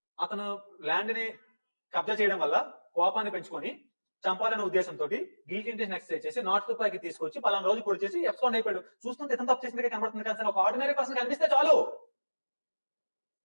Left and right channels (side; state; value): both; inverted; correlation -1.00